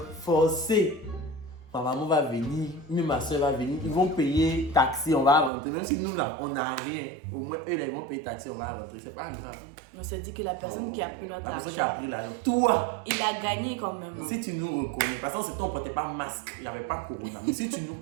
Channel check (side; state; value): left; drops out; at 5.5 s